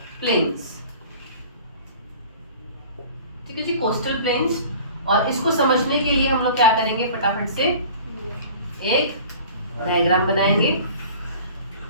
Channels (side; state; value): both; inverted; correlation -0.44